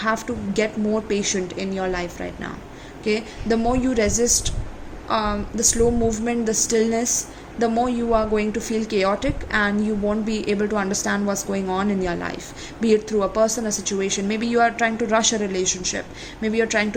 to get more patient in your life right now. Okay? The more you resist the slow movement, the stillness, the more you are going to feel chaotic, and you won't be able to understand what's going on in your life, be it through a person, a situation. Maybe you are trying to rush a relationship, maybe you're trying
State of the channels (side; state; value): both; identical; correlation 1.00